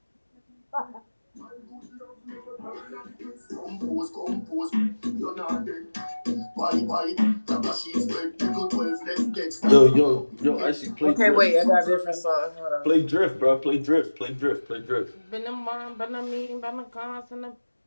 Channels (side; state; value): both; inverted; correlation -1.00